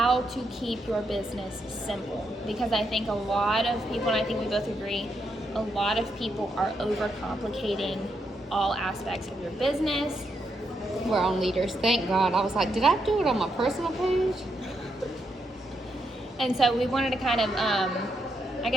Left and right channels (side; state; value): both; normal; correlation 0.80